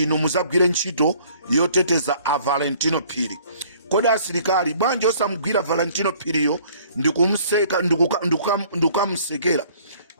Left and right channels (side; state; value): both; inverted; correlation -0.56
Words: muzagwire ntchito yoteteza a Valentino Phiri. Kodi asilikali bwanji osamugwira Valentino Phiriyo ndikumseka ndikukamsekera